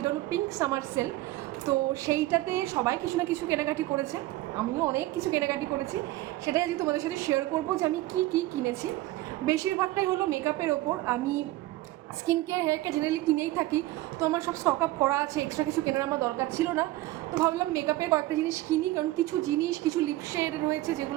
হলো পিঙ্ক সামার সেল। তো সেইটাতে সবাই কিছু না কিছু কেনাকাটি করেছে, আমিও অনেক কিছু কেনাকাটি করেছি। সেটাই আজকে তোমাদের সাথে শেয়ার করবো যে আমি কী কী কিনেছি। বেশিরভাগটাই হলো মেকআপের ওপর। আমি skin care hair care generally কিনেই থাকি, তো আমার সব স্টক আপ করা আছে, এক্সট্রা কিছু কেনার আমার দরকার ছিল না। তো ভাবলাম মেকআপের কয়েকটা জিনিস কিনি, কারণ কিছু জিনিস, কিছু লিপশেড রয়েছে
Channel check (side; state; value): left; quieter; 17.5 dB